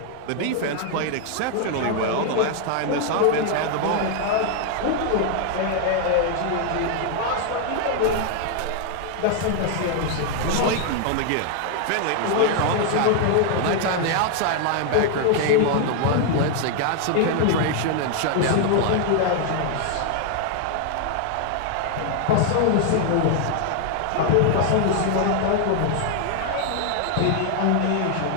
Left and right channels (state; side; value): different; both; correlation 0.00